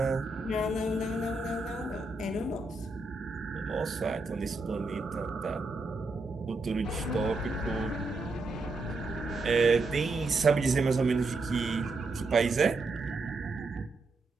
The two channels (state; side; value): quieter; left; 3.2 dB